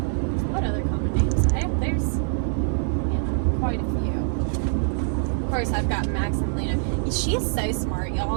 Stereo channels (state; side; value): silent; left; digital silence